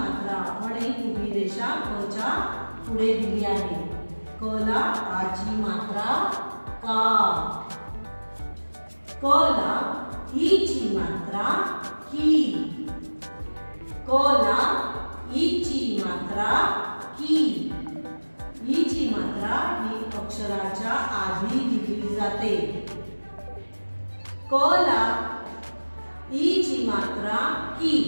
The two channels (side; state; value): both; inverted; correlation -1.00